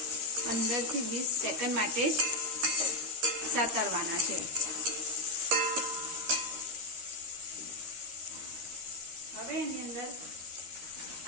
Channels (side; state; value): left; late; 13 ms